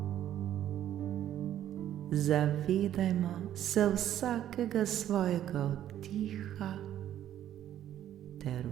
Zavedajmo se vsakega svojega vdiha ter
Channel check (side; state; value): left; quieter; 11.5 dB